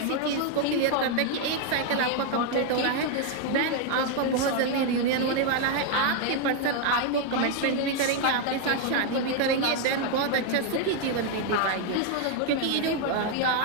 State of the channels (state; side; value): different; both; correlation 0.00